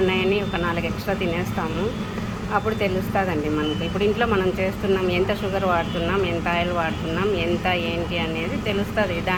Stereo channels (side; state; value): both; identical; correlation 1.00